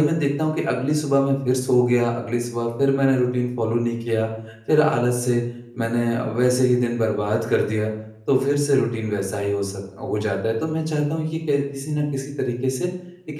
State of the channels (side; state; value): both; identical; correlation 1.00